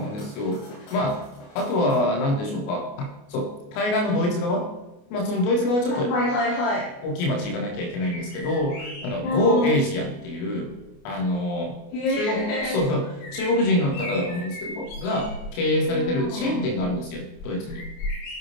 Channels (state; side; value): late; right; 29 ms